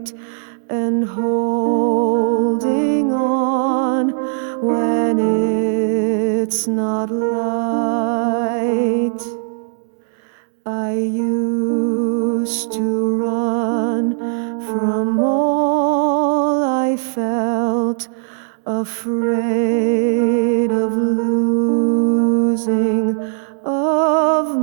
and holding on when it's not light. I used to run from all I felt, afraid of losing of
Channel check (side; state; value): left; silent; digital silence